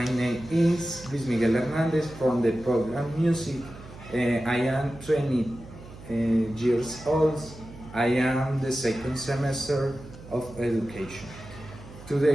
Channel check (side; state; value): right; noise; hum, 17 dB below the sound